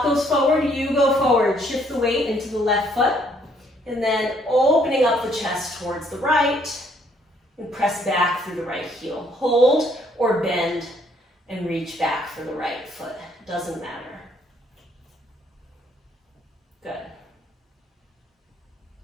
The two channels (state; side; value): normal; both; correlation 0.66